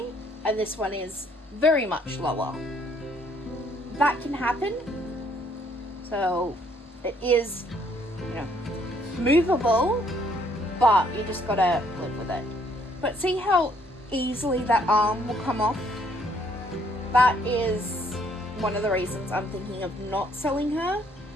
and this one is very much lower. That can happen, so it is, movable, but you just gotta live with it. But see how easily that arm will come off? That is one of the reasons I'm thinking of not selling her.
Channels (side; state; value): both; normal; correlation 0.66